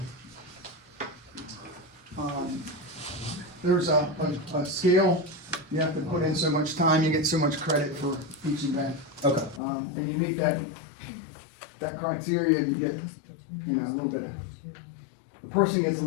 there's a scale. You have to put in so much time, you get so much credit for each event. Okay. And you meet that criteria, you get, you know, a little bit, the person gets a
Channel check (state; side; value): drops out; right; at 9.6 s